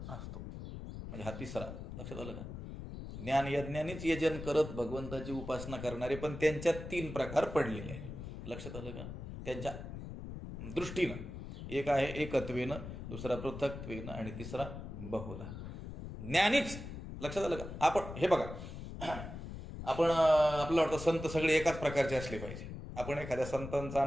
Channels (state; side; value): noise; left; rumble, 9 dB below the sound